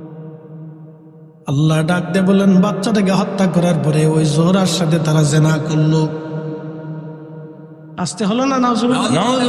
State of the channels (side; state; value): both; identical; correlation 1.00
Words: আল্লাহ ডাক দিয়ে বলেন, বাচ্চাটাকে হত্যা করার পরে ওই জোহরার সাথে তারা জেনা করলো। আসতে হলো না?